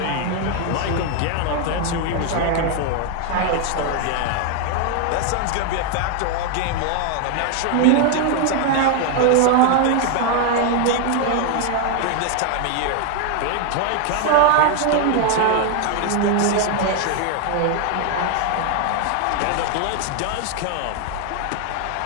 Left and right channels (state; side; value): different; both; correlation 0.01